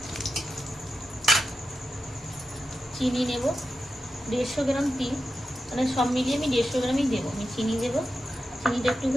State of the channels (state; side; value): normal; both; correlation 0.90